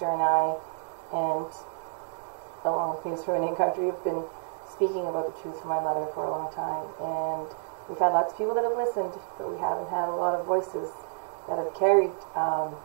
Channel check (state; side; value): silent; left; 58 dB below the other